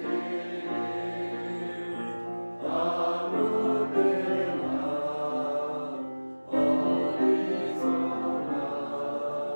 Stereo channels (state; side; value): inverted; both; correlation -1.00